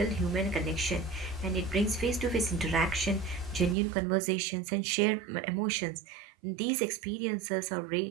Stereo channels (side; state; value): left; drops out; at 3.8 s